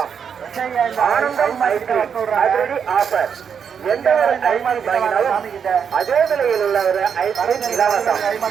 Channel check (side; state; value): left; quieter; 7.2 dB